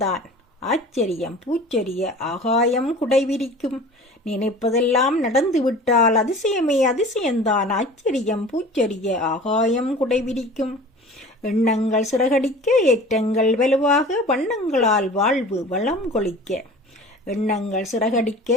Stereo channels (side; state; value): both; normal; correlation 0.42